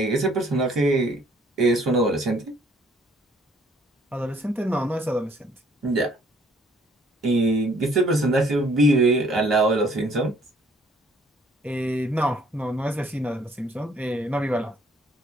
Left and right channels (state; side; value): normal; both; correlation 0.61